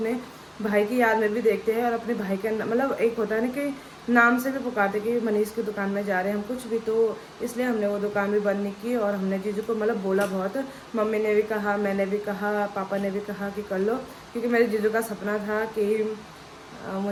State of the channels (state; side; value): identical; both; correlation 1.00